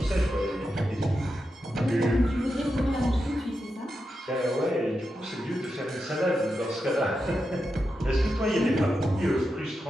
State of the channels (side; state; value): both; normal; correlation 0.88